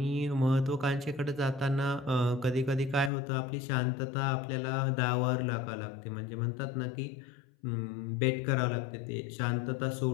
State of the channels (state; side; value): drops out; right; at 3.1 s